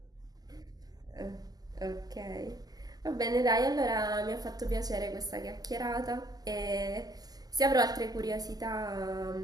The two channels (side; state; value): left; late; 0.18 ms